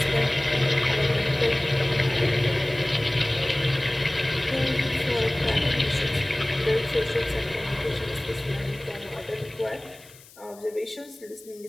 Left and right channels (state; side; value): noise; left; hiss, 23 dB below the sound